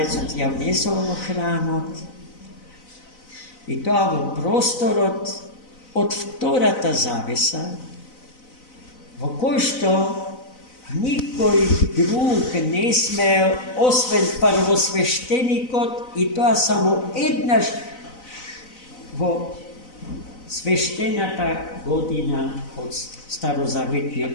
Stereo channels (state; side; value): late; right; 4.0 ms